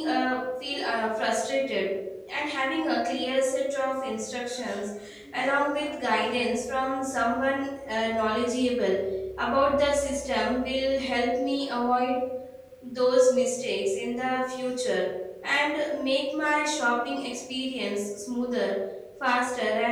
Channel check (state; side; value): identical; both; correlation 1.00